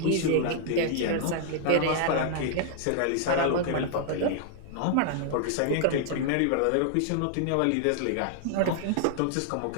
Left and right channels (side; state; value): both; different; correlation -0.01